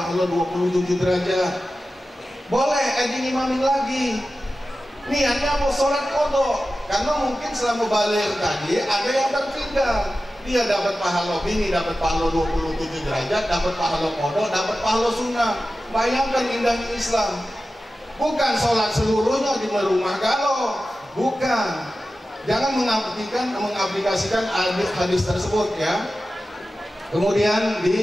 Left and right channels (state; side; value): normal; both; correlation 0.94